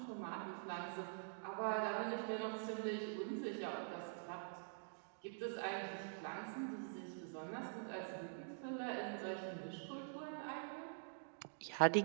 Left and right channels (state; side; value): silent; left; digital silence